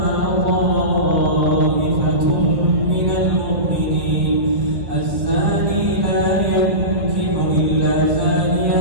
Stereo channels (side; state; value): left; late; 1.7 ms